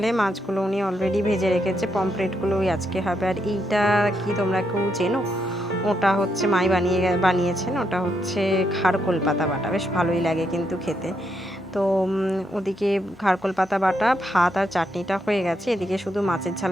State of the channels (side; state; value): both; normal; correlation 0.79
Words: মাছগুলো উনি অলরেডি ভেজে রেখেছে, পমফ্রেটগুলো ওই আজকে হবে। আর এইটা কি তোমরা কেউ চেনো? ওটা হচ্ছে মাই বানিয়েছেন, ওটা হচ্ছে খারকোল পাতা বাটা, বেশ ভালোই লাগে কিন্তু খেতে। তো ওদিকে খারকোল পাতা বাটা, ভাত আর চাটনিটা হয়ে গেছে, এদিকে শুধু মাছের